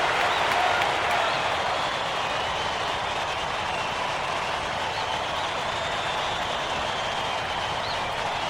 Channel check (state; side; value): identical; both; correlation 1.00